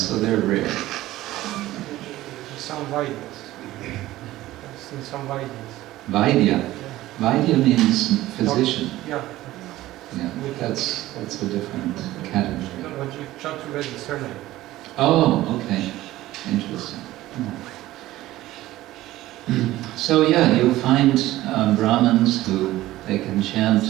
they're rare. Some Vaidyas. I've seen some Vaidyas. Vaidya. Vaidya means physician. Yeah. Yeah, that's a different category. No, but you Chaturvedi surname. Oh, okay. Interesting. So yeah, you'll find Brahmins who they can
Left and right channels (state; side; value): quieter; left; 16.0 dB